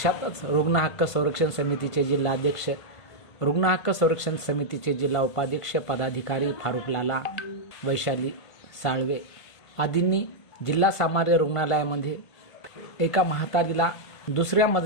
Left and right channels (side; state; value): right; late; 1.5 ms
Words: रुग्ण हक्क संरक्षण समितीचे जिल्हाध्यक्ष, रुग्ण हक्क संरक्षण समितीचे जिल्हा उपाध्यक्ष पदाधिकारी फारुक लाला, वैशाली साळवे आदींनी जिल्हा सामान्य रुग्णालयामध्ये एका म्हातारीला दुसऱ्या